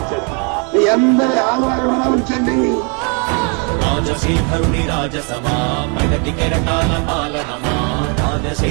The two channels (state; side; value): quieter; left; 35.9 dB